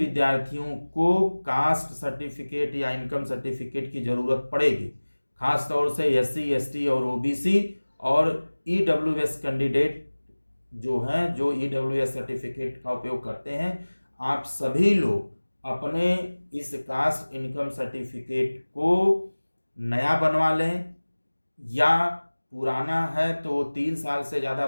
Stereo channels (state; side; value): inverted; both; correlation -1.00